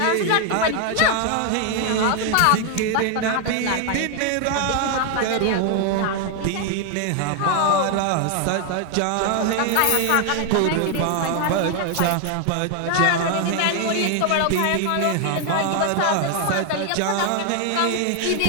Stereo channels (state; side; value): different; both; correlation 0.00